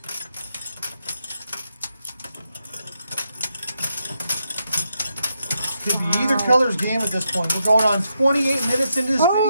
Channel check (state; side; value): inverted; both; correlation -0.82